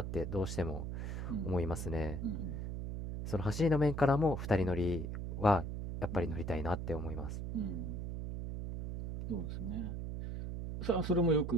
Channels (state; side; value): noise; right; hum, 4 dB below the sound